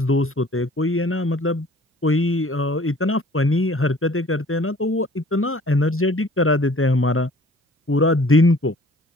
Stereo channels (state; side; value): normal; both; correlation 0.52